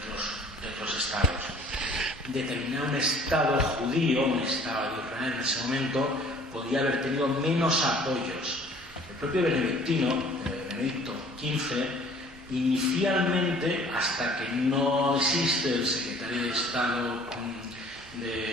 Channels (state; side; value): normal; both; correlation 0.52